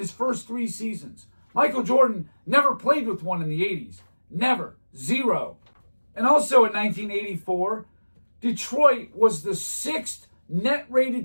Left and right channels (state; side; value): inverted; both; correlation -1.00